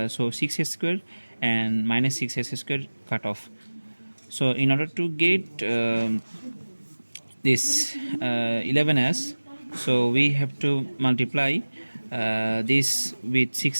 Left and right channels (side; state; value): both; inverted; correlation -1.00